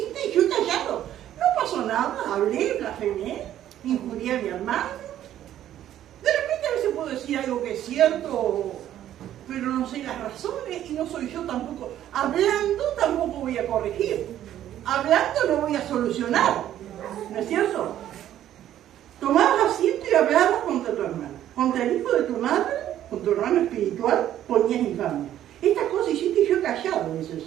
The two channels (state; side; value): quieter; left; 11.8 dB